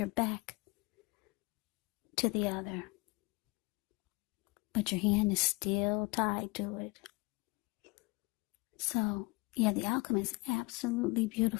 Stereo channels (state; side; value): quieter; right; 25.5 dB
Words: back to the other. But your hand is still tied to it. So, yeah, the outcome is absolutely